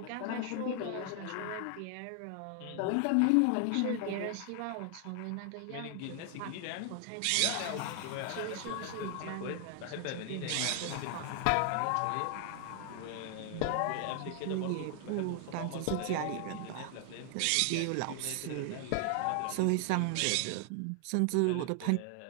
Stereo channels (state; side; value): different; both; correlation 0.00